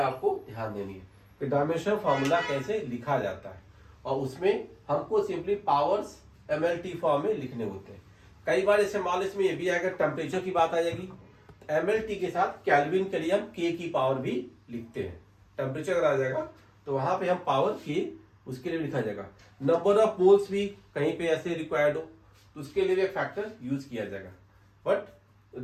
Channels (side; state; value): both; identical; correlation 1.00